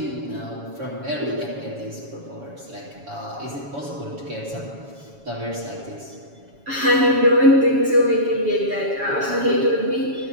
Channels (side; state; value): left; late; 7.2 ms